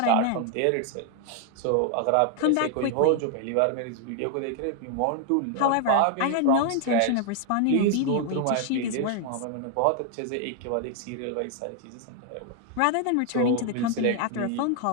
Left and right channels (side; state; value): both; different; correlation 0.00